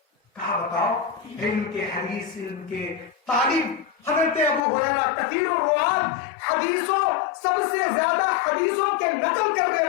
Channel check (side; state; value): right; drops out; at 4.6 s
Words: کہا بتاؤ, علم کے حدیث, علم کے تعلیم. حضرت ابو ہریرہ کثیر الروات, حدیثوں سب سے زیادہ حدیثوں کے نقل کرنے